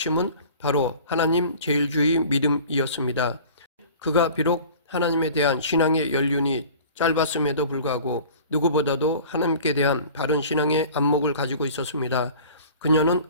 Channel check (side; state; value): both; inverted; correlation -0.44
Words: 바로 하나님 제일주의 믿음이었습니다. 그가 비록 하나님에 대한 신앙의 연륜이 짧았음에도 불구하고 누구보다도 하나님께 대한 바른 신앙의 안목을 가지고 있었습니다. 그녀는